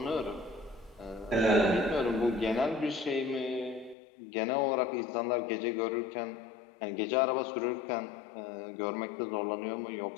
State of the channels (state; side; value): drops out; right; at 4.0 s